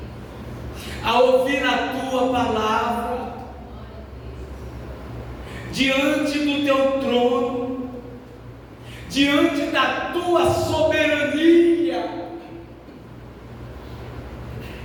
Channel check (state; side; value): identical; both; correlation 1.00